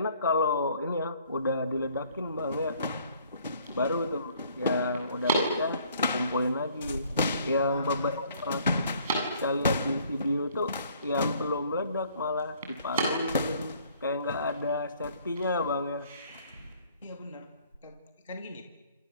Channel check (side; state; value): both; inverted; correlation -0.60